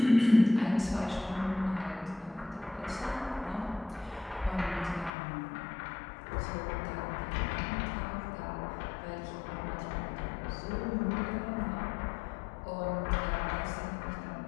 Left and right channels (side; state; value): right; drops out; at 5.1 s